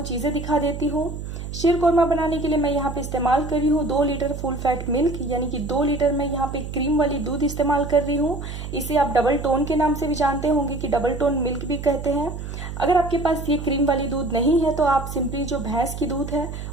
चीज़ें दिखा देती हूँ। शीर कोरमा बनाने के लिए मैं यहाँ पे इस्तेमाल कर रही हूँ 2 लीटर फुल फैट मिल्क, यानी कि 2 लीटर मैं यहाँ पे क्रीम वाली दूध इस्तेमाल कर रही हूँ। इसे आप डबल टोन के नाम से भी जानते होंगे कि डबल टोन मिल्क भी कहते हैं। अगर आपके पास ये क्रीम वाली दूध नहीं है तो आप सिंपली जो भैंस की दूध है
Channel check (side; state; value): right; noise; hum, 8 dB below the sound